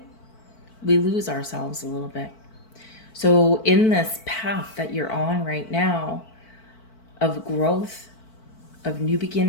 we lose ourselves a little bit. So in this path that you're on right now of growth, of new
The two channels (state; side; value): late; right; 4.5 ms